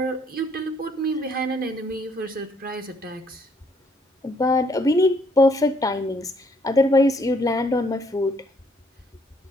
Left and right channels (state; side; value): normal; both; correlation 0.67